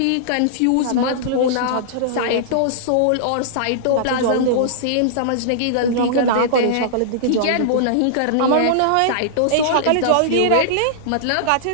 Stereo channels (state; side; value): different; both; correlation -0.02